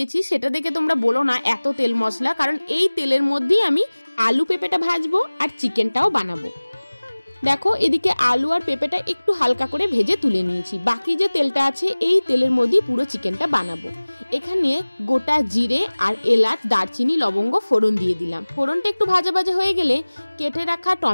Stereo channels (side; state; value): both; inverted; correlation -1.00